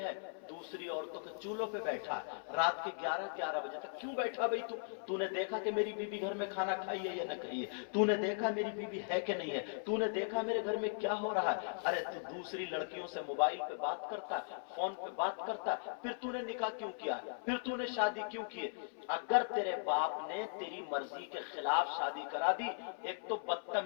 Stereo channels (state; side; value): silent; right; 52 dB below the other